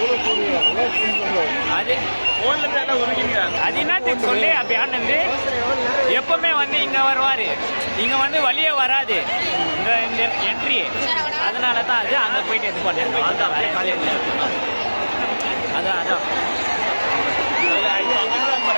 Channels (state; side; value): inverted; both; correlation -1.00